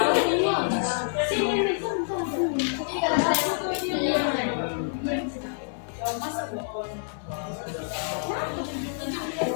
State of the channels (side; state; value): right; silent; digital silence